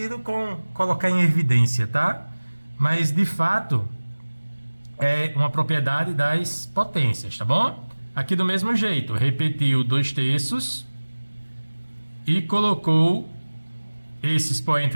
com colocar em evidência, tá? Mas, de fato, é uma propriedade das potências, tá bom? Aqui do mesmo jeito, repetiu 2/3 e colocou esse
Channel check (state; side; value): inverted; both; correlation -1.00